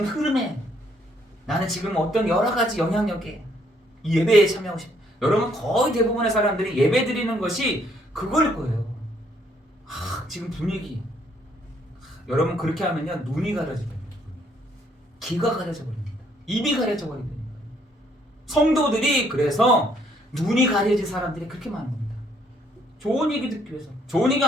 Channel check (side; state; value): both; normal; correlation 0.68